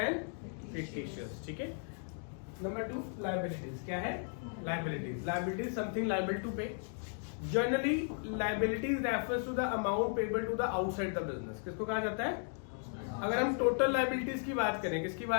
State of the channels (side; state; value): right; silent; 54 dB below the other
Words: fictitious. ठीक है, नंबर 2 लायबिलिटीज। क्या है? Liabilities. Liabilities something liable to pay. Generally liabilities refers to the amount payable to the outside the business. किसको कहा जाता है? अगर हम टोटल लायबिलिटीज की बात करें, किसकी